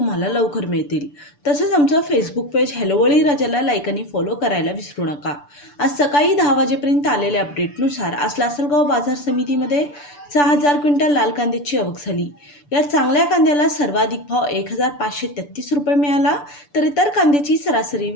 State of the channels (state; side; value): late; right; 6.9 ms